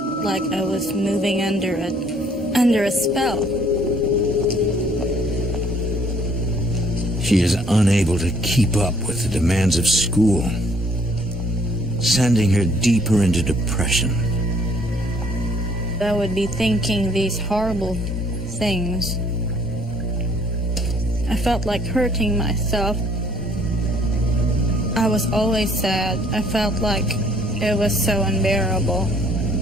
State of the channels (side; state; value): both; normal; correlation 0.62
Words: Like I was moving under a spell. She is unable to keep up with the demands of school, sending her deeper into depression. I would be thinking these horrible things. I felt like hurting myself. I was always sad. I felt like it was so unbearable.